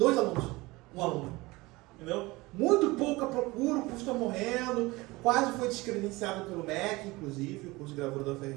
alunos, 1 aluno. Entendeu? Muito pouca procura, o curso está morrendo, quase foi descredenciado pelo MEC, inclusive, o curso de gravura da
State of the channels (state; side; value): quieter; left; 21.8 dB